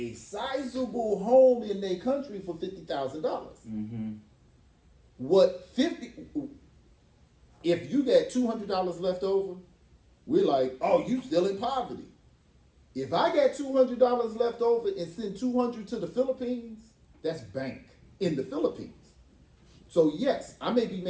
sizable home in their country for $50,000. Mm-hmm. If you got $200 left over, we're like, oh, you still in poverty. If I got $200 left over and send $200 to the Philippines, that's bank in the Philippines. So yes, I may be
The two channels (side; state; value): both; identical; correlation 1.00